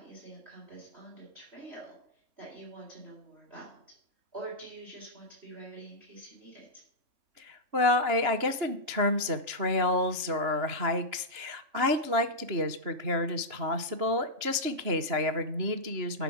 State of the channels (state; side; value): late; left; 3.0 ms